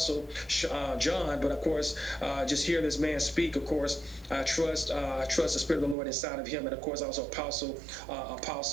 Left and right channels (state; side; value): drops out; left; at 6.0 s